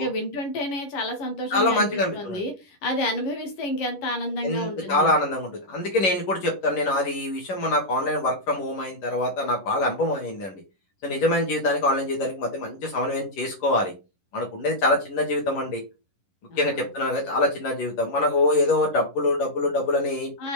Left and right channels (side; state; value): right; late; 11 ms